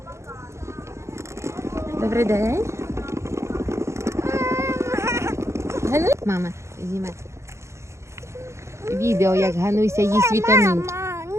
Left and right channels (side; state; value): left; late; 0.14 ms